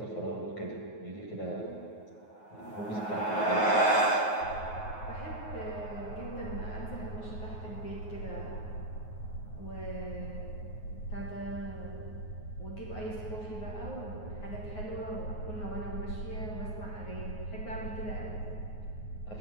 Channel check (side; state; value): right; late; 9.5 ms